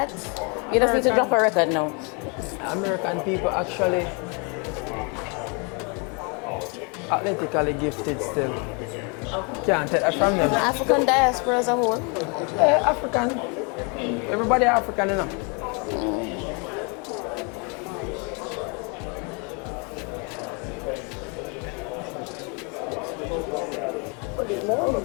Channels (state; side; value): quieter; right; 33.7 dB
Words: You just need to drop a record now. American people actually athletically gifted still. Can't take that from them. African diaspora as a whole. Yeah, African. Everybody African, you know.